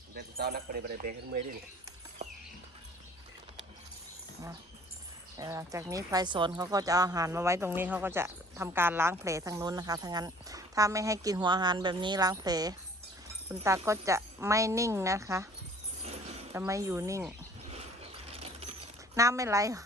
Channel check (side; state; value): both; normal; correlation 0.53